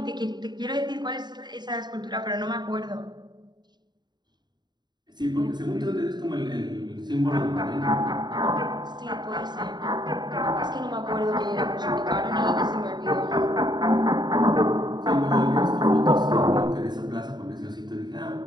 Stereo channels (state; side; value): late; left; 0.21 ms